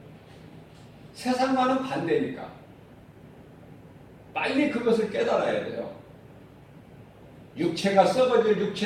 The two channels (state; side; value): identical; both; correlation 1.00